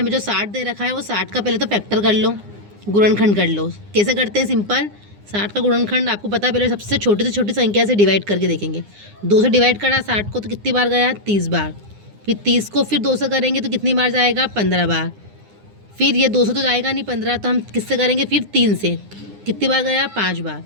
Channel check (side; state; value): left; late; 9.8 ms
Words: जो 60 दे रखा है वो 60 का पहले तो फैक्टर कर लो, गुणनखंड कर लो। कैसे करते हैं? सिंपल, 60 का गुणनखंड आपको पता है, पहले सबसे छोटी से छोटी संख्या से डिवाइड करके देखेंगे। 2 से डिवाइड करा 60 को तो कितनी बार गया? 30 बार। फिर 30 को फिर 2 से करेंगे तो कितनी बार जाएगा? 15 बार। फिर ये 2 से तो जाएगा नहीं 15, तो हम किससे करेंगे? फिर 3 से। कितनी बार गया? 5 बार।